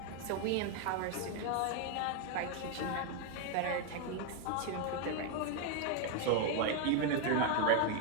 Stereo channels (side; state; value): both; different; correlation 0.01